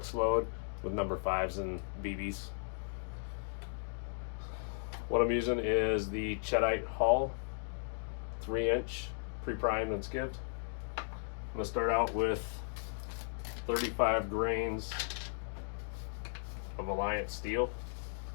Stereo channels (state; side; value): silent; right; digital silence